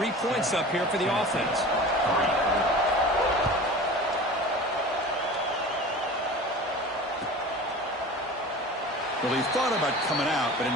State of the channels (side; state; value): both; normal; correlation 0.37